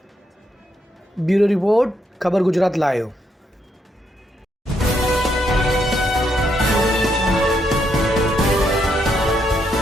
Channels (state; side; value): normal; both; correlation 0.77